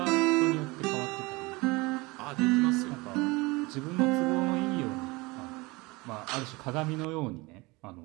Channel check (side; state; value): left; quieter; 23.9 dB